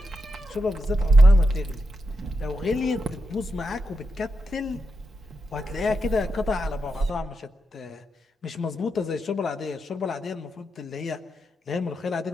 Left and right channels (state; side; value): normal; both; correlation 0.86